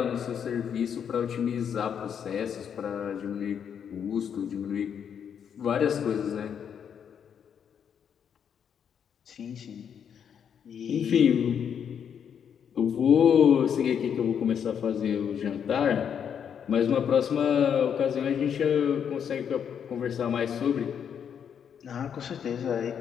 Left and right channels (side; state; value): right; quieter; 8.0 dB